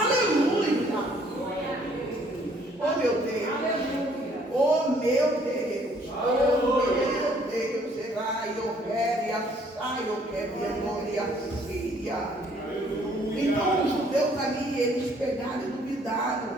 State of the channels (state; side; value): normal; both; correlation 0.62